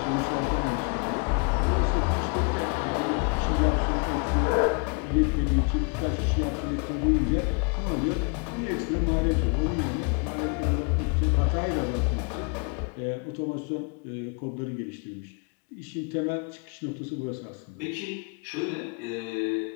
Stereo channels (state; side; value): quieter; right; 34.8 dB